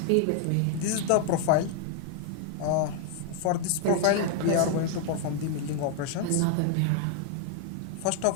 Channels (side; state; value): both; different; correlation 0.00